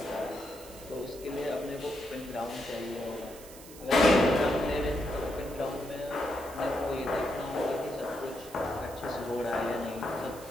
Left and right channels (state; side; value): noise; right; hiss, 17 dB below the sound